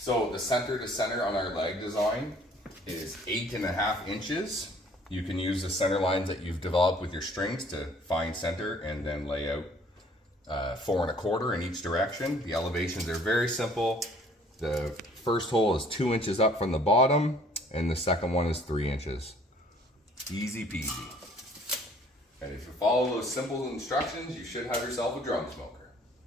the center to center on our leg design is 8.5 inches. You can use the center lines that you've developed with your strings to find center and then lay out 4 1/4 in each direction. The elevations are very simple. The first hole is 2 inches up from the bottom, and the second one is 3 inches. Easy peasy. And if you follow those simple instructions, you should have yourself a drum smoker.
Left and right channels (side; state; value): both; normal; correlation 0.57